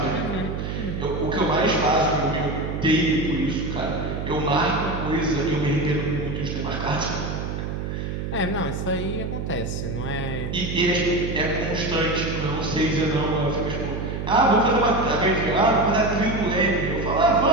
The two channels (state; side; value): noise; right; hum, 4 dB below the sound